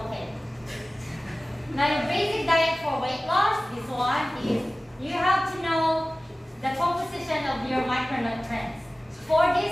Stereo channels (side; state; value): both; normal; correlation 0.97